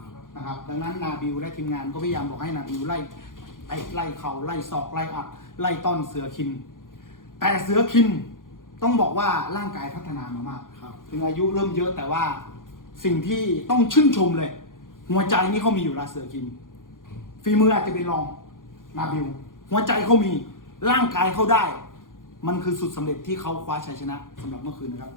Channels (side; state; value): right; late; 0.89 ms